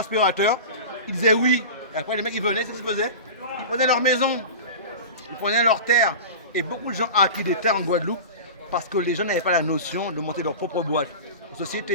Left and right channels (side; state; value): both; inverted; correlation -0.31